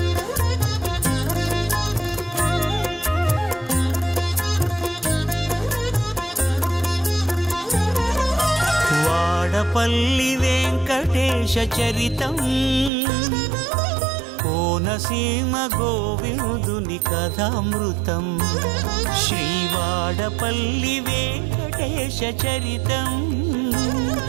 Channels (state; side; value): drops out; left; at 12.9 s